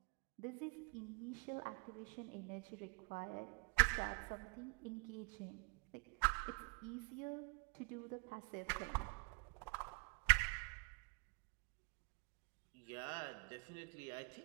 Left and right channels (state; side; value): quieter; left; 29.9 dB